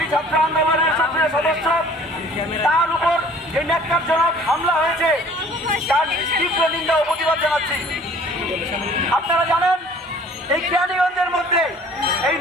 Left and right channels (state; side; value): normal; both; correlation 0.52